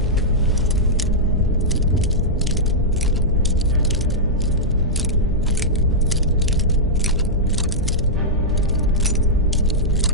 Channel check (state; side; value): normal; both; correlation -0.09